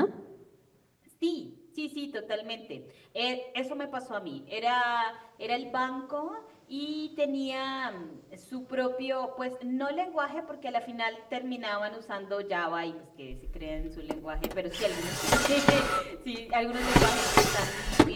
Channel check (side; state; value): both; identical; correlation 1.00